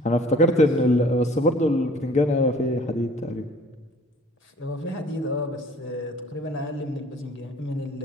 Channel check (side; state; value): both; normal; correlation 0.52